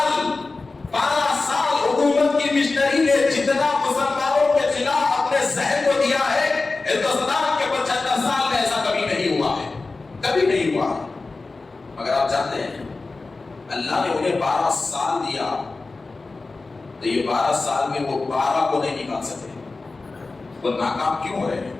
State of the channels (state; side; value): quieter; right; 3.6 dB